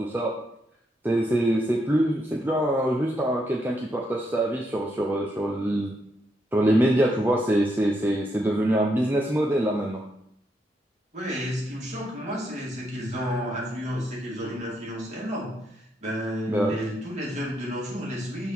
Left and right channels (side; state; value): both; normal; correlation 0.78